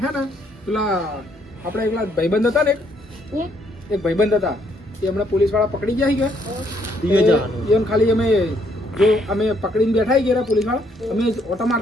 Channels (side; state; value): both; normal; correlation 0.70